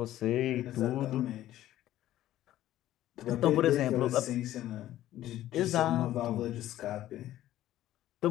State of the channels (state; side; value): quieter; right; 13.6 dB